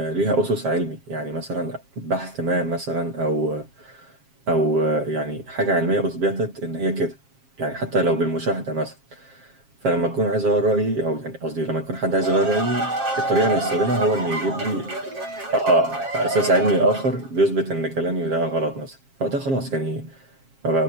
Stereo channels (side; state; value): left; late; 7.4 ms